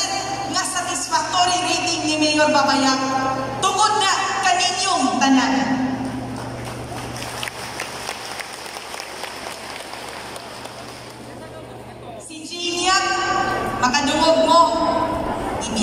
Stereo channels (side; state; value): both; identical; correlation 1.00